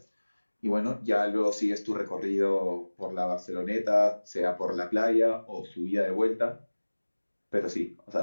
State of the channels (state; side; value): inverted; both; correlation -1.00